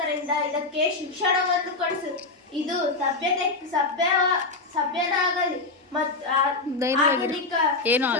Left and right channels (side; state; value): right; quieter; 3.5 dB